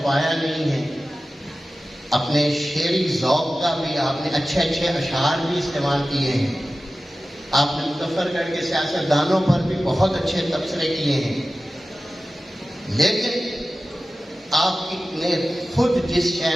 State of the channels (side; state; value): both; normal; correlation 0.95